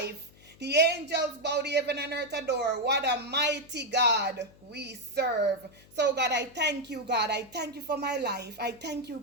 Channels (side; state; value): left; noise; hum, 25 dB below the sound